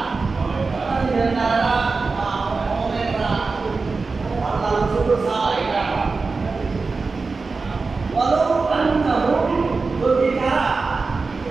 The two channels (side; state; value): left; quieter; 4.2 dB